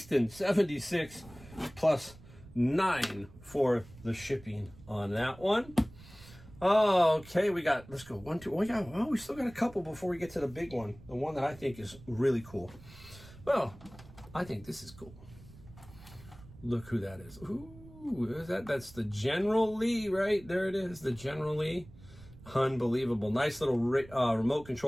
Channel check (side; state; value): right; noise; rumble, 20 dB below the sound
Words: 76 plus 9 for the shipping on that one. Okay, let's go 1, 2. We still got a couple before we get to the big one. The one that I think is really cool. Well, I think this is cool. Look who that is. Ooh, that's the General Lee, right? There it is, the General Lee. Unbelievable. Nice little remote